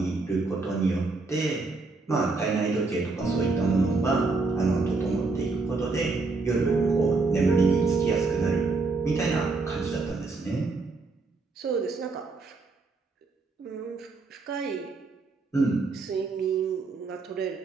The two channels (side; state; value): left; quieter; 3.8 dB